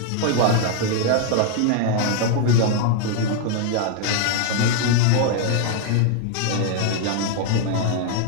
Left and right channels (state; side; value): different; both; correlation 0.00